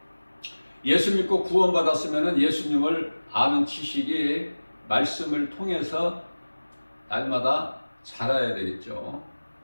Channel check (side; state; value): both; inverted; correlation -1.00